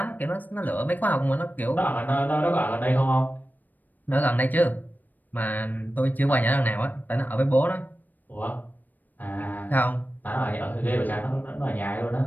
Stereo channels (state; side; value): late; right; 0.086 ms